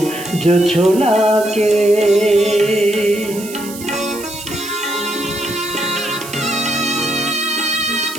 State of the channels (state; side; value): noise; right; hiss, 13 dB below the sound